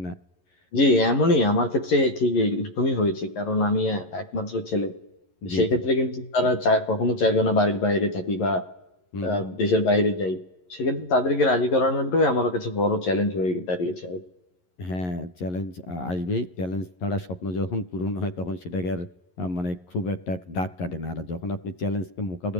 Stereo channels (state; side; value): late; right; 11 ms